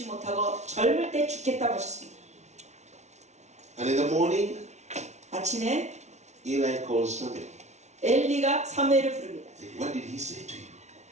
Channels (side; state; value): left; late; 0.32 ms